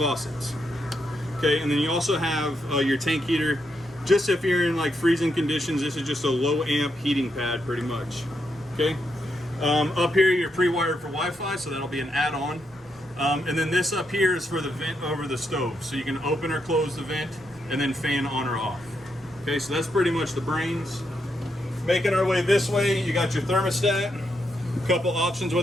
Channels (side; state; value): both; normal; correlation 0.81